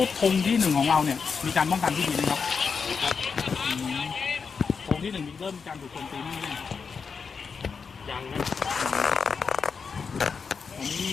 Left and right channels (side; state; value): right; quieter; 5.6 dB